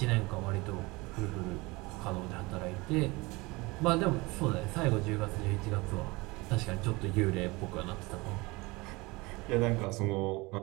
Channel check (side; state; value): left; quieter; 23.7 dB